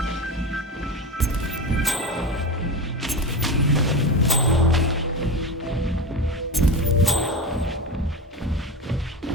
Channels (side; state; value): both; normal; correlation 0.25